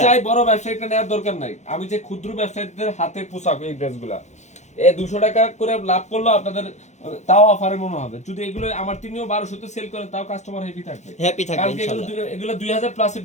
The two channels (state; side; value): late; right; 0.33 ms